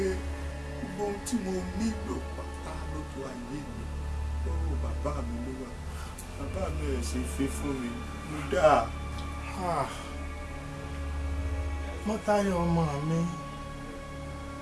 gbogbo ohun tí mo nílò pátá lójú ayé mi lọ́wọ́ bàbá mi ló wà. Bàbá mi ẹ̀ ṣe fi fún mi mo dáa. Mọ́táyọ̀ ọmọ mi,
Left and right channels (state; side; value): identical; both; correlation 1.00